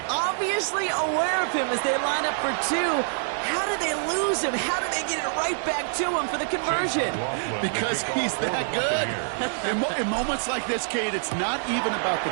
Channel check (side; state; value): left; silent; digital silence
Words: obviously aware of him as they line up for 2. How did they lose him? How did they get it right back to him for the conversion? Because he's that good. In moments like this, Kate, it's not even about the